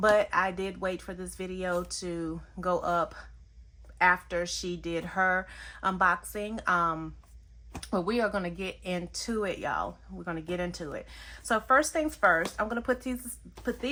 I did wait for this video to go up after she did her unboxing. But we are going to get into it, y'all. We're going to get into it. So first things first, I'm going to put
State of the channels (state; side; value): identical; both; correlation 1.00